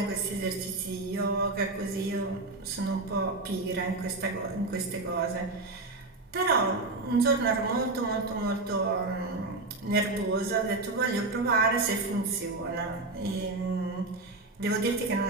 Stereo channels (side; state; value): left; quieter; 3.2 dB